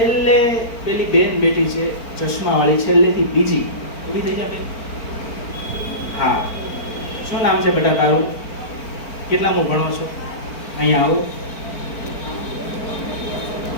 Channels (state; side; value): late; right; 4.4 ms